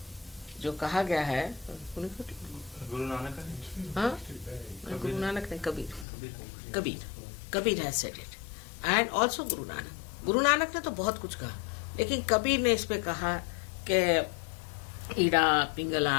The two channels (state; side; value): drops out; right; at 6.1 s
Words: जो कहा गया है गुरु नानक हाँ गुरु नानक ने कबीर है said it, and also Guru Nanak ने तो बहुत कुछ कहा, लेकिन कबीर ने इस पे कहा कि ईड़ा